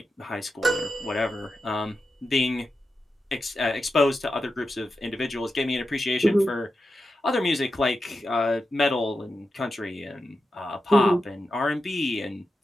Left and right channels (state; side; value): normal; both; correlation 0.89